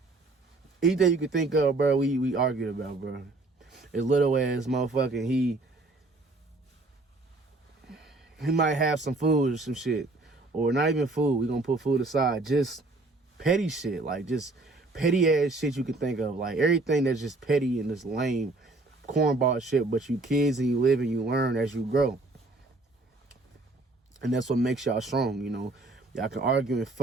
Anything you could think of, bro, we argued about, bro. As little as motherfucking he might have some food or some shit. Or not even food. We gonna put food aside. Just petty shit. Like, just petty ass shit you can think of. Like, everything that's just petty and just lame cornball shit. But you kids and you live and you learn as you grow. And that's what makes y'all strong, you know. Y'all can argue and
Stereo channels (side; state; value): left; quieter; 3.1 dB